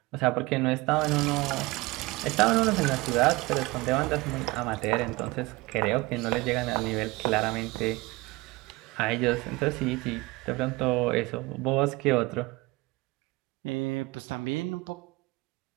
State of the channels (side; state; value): left; quieter; 22.7 dB